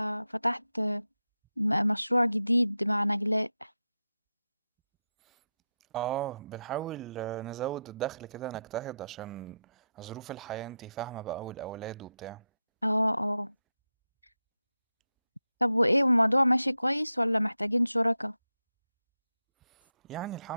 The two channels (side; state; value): both; inverted; correlation -0.89